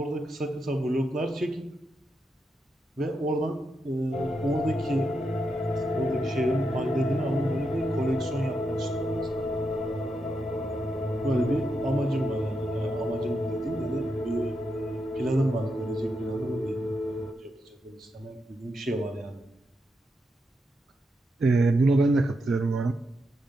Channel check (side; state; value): both; normal; correlation 0.84